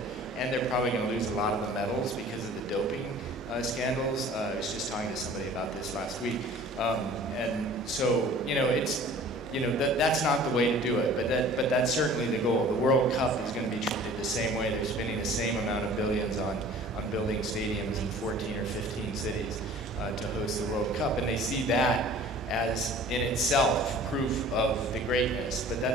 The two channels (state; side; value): normal; both; correlation 0.47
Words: And they're probably going to lose a lot of the medals because of the doping scandals. I was just talking to somebody about this last week. And so, you know, it's, you know, that's not the way to do it, but that's certainly the goal. The World Cup is going to be treated the same way. They're spending the same amount of billions on building stadiums in 14 or 15 cities to host the World Cup, and they see that as in itself proof of the greatness, but